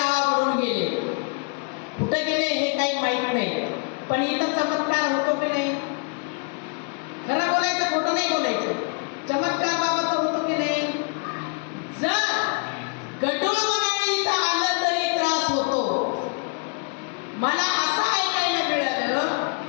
गेले, कुठे गेले हे काही माहित नाही, पण इथं चमत्कार होतो की नाही? खरं बोलायचं, खोटं नाही बोलायचं. चमत्कार बाबाचा होतो की नाही? जर गटूळ मनाने इथं आलं तरी त्रास होतो. मला असं ऐकायला मिळालं,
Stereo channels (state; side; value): quieter; right; 36.2 dB